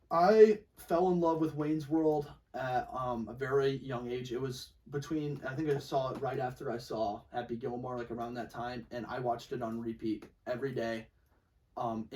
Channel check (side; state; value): both; identical; correlation 1.00